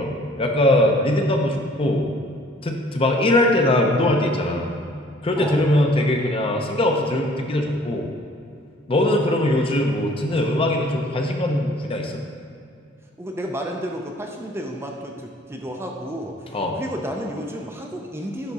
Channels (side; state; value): both; normal; correlation 0.55